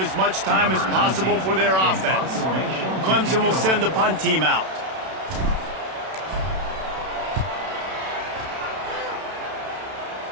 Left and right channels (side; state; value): left; late; 32 ms